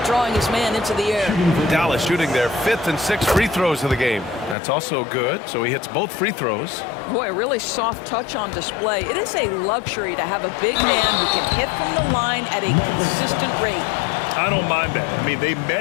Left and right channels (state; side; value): drops out; right; at 4.5 s